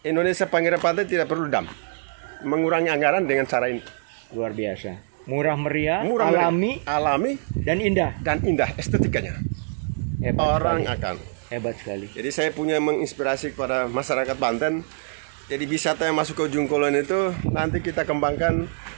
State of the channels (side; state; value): left; silent; digital silence